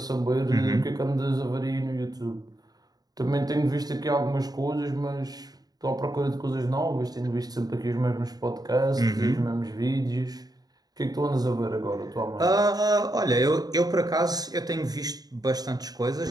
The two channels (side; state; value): left; late; 0.19 ms